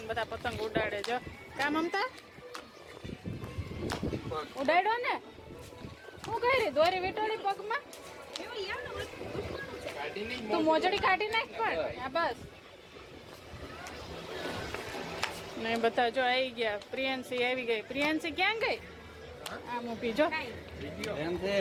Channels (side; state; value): both; identical; correlation 1.00